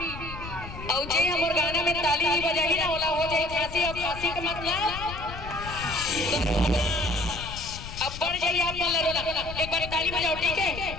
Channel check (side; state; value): left; noise; rumble, 11 dB below the sound